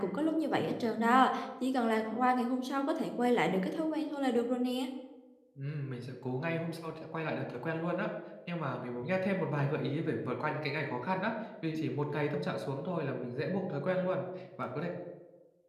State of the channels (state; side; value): identical; both; correlation 1.00